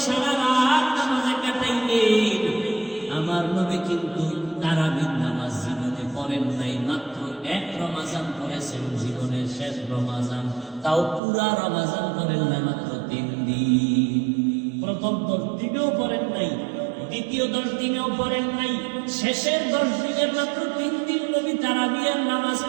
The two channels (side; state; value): left; drops out; at 11.2 s